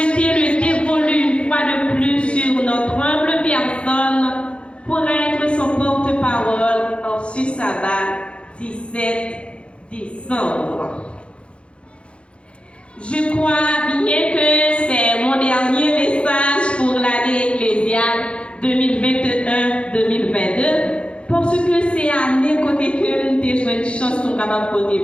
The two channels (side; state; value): right; late; 0.058 ms